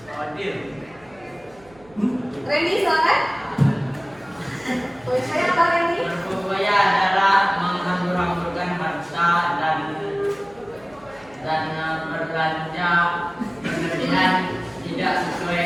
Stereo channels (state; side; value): noise; right; hum, 26 dB below the sound